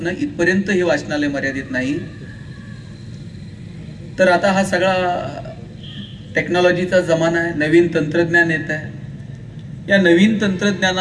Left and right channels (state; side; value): identical; both; correlation 1.00